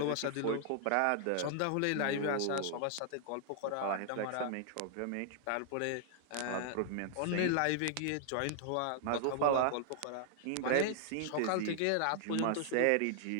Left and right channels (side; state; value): both; different; correlation -0.01